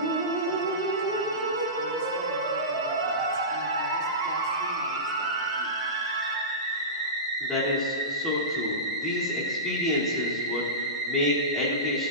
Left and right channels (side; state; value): both; normal; correlation -0.20